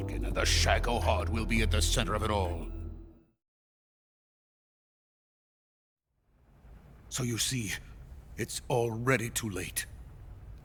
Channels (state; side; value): identical; both; correlation 1.00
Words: and the Shagohod will be at the center of it all. So you see, it's already too late.